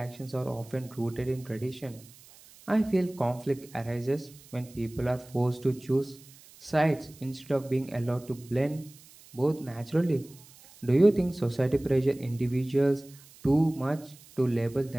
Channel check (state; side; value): noise; right; hiss, 23 dB below the sound